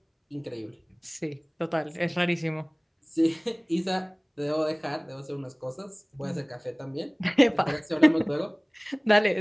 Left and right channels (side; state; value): both; identical; correlation 1.00